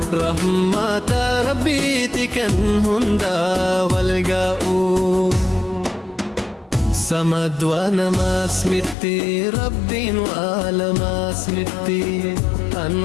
رحمة ربي تكن هندا والقاؤ سمد وانا ما سمتي ربي وعلى ما سمتي أن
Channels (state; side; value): drops out; right; at 9.0 s